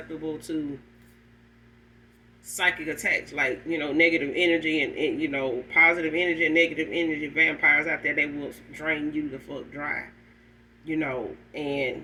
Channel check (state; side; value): identical; both; correlation 1.00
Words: to, psychic attacks, like, negative energy, and positive energy and negative energy vampires out there. They will drain you the fuck dry.